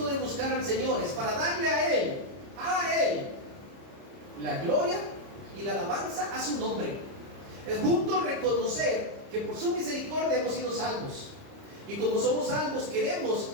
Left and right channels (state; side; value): late; left; 30 ms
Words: de buscar al Señor es para darle a Él, la gloria y la alabanza a su nombre. Es justo reconocer que por su misericordia hemos sido salvos. Y como somos salvos, queremos